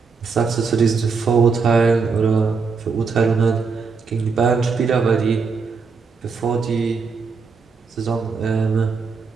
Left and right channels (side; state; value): left; quieter; 5.0 dB